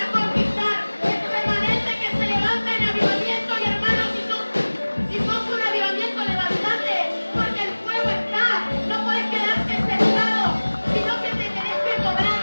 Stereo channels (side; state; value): both; inverted; correlation -1.00